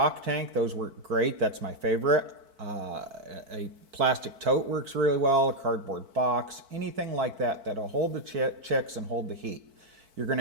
tank, those work great. That's my favorite. A plastic tote works really well, a cardboard box, anything like that that'll hold the chicks and hold the heat. You're going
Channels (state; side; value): late; left; 4.5 ms